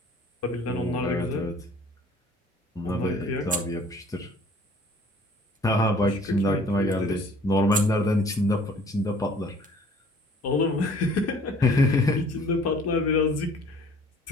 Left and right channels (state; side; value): normal; both; correlation 0.54